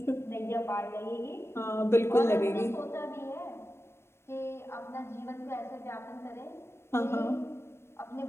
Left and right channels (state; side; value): late; right; 0.12 ms